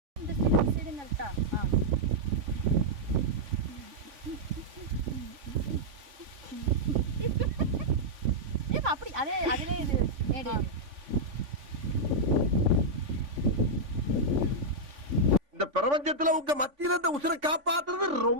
இந்த சைடு நட்டா. அப்படி அதே அதுல இது மேடு. இந்த பிரபஞ்சத்துல உங்க மத்தியில இந்த உசுரை காப்பாத்துறது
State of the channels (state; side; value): late; left; 3.5 ms